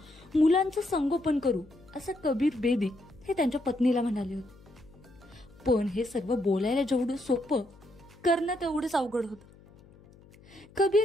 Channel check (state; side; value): noise; left; hum, 24 dB below the sound